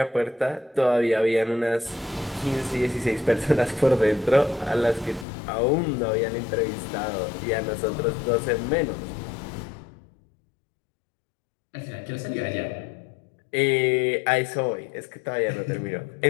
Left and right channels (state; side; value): drops out; right; at 5.2 s